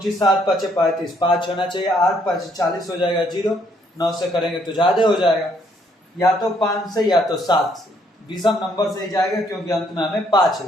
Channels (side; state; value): both; normal; correlation 0.69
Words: 7 5 35, 5 होना चाहिए, 8 5 40 हो जाएगा 0, 9 से करेंगे तो ज्यादा हो जाएगा। या तो 5 से या तो 7 से, विषम नंबर से ही जाएगा, क्योंकि अंत में हमें 5